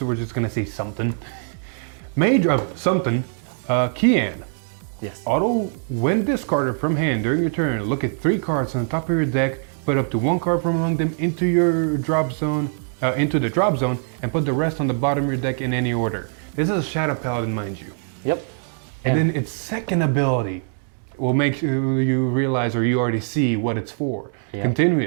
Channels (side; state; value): left; silent; digital silence